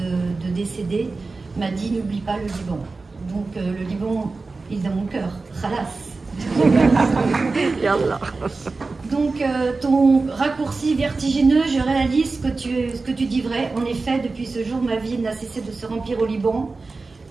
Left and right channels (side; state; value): left; quieter; 3.8 dB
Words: décéder, m'a dit « N'oublie pas le Liban ». Donc le Liban, il est dans mon cœur. Khalas. Donc ton raccourci vertigineux, je réalise ce que tu dis vrai. En effet, depuis ce jour, ma vie n'a cessé de se remplir au Liban,